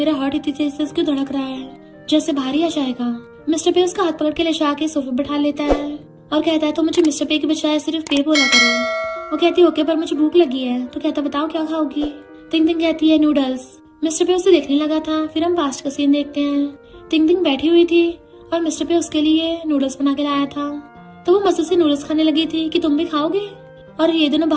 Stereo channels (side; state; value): both; identical; correlation 1.00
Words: हार्ट इतनी तेज से उसको धड़क रहा है जैसे भारी आ जाएगा। मिस्टर पे उसका हाथ पकड़ के ले जाके सोफे बैठा लेता है और कहता है तो मुझे मिस्टर पे के बजाय सिर्फ पे बोला करो। वो कहती है ओके पर मुझे भूख लगी है। तो कहता बताओ क्या खाओगी। तिंग तिंग कहती है नूडल्स। मिस्टर पे उसे देखने लगा था। फिर हम पास्ट का सीन देखते हैं। तिंग तिंग बैठी हुई थी और मिस्टर पे उसके लिए नूडल्स बना के लाया था तो वो मजे से नूडल्स खाने लगी थी कि तुम भी खाओगे। और ये दोनों